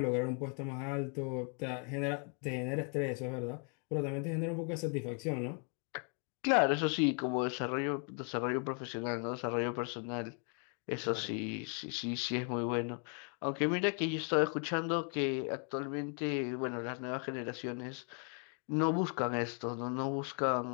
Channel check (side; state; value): right; quieter; 39.9 dB